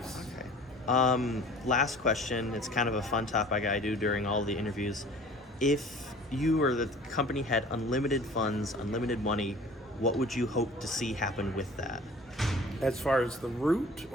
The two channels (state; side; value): normal; both; correlation 0.46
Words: Okay. Last question. It's kind of a fun topic I do during all the interviews. If you or the company had unlimited funds, unlimited money, what would you hope to see happen with that? As far as the route